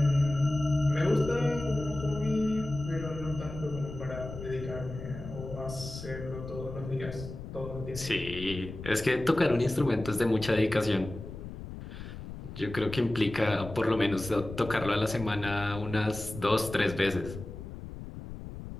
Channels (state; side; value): noise; left; rumble, 10 dB below the sound